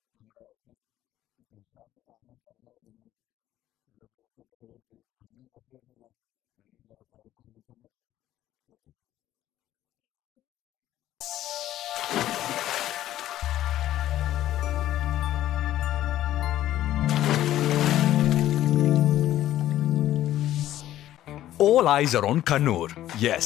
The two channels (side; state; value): right; quieter; 13.2 dB